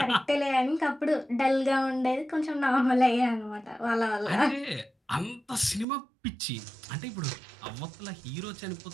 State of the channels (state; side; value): drops out; left; at 5.9 s